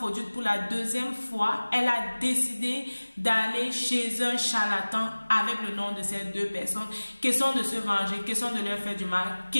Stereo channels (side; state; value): both; inverted; correlation -1.00